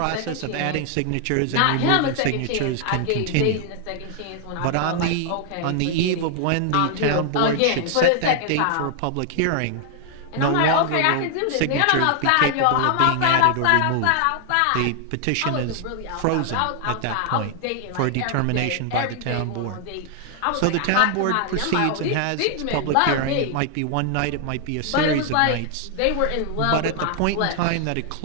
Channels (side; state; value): both; different; correlation 0.00